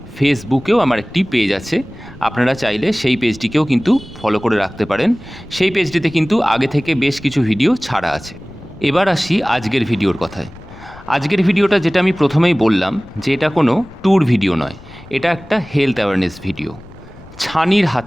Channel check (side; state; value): left; noise; rumble, 20 dB below the sound